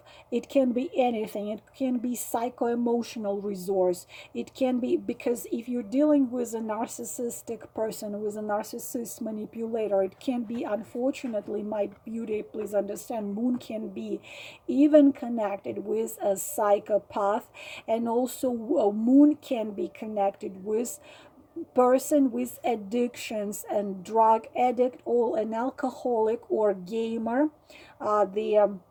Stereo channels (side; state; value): both; identical; correlation 1.00